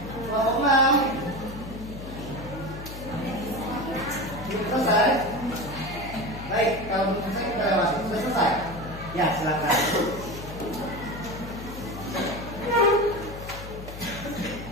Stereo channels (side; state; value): left; noise; hum, 11 dB below the sound